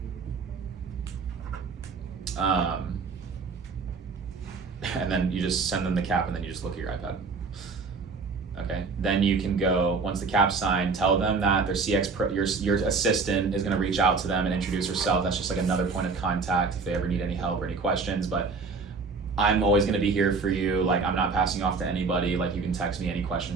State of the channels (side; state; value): left; quieter; 4.5 dB